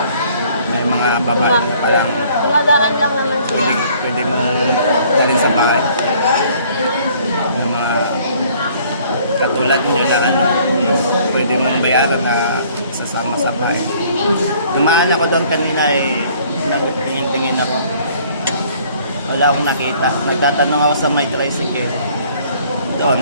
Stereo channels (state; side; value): inverted; both; correlation -0.58